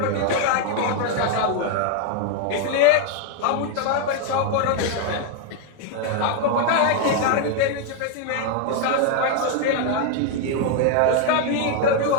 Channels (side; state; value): both; different; correlation 0.01